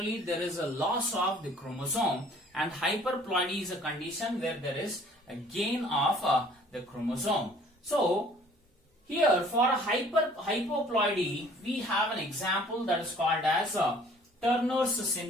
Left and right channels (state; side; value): normal; both; correlation 0.54